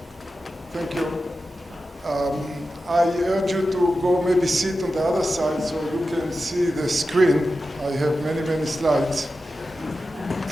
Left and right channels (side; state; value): both; normal; correlation 0.92